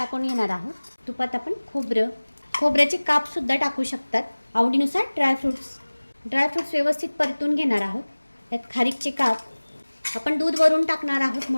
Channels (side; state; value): both; inverted; correlation -1.00